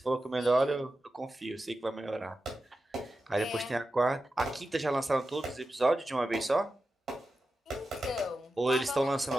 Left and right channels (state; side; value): normal; both; correlation 0.92